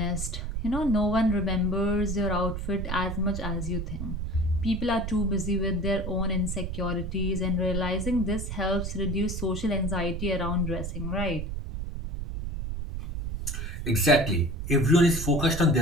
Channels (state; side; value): noise; right; rumble, 4 dB below the sound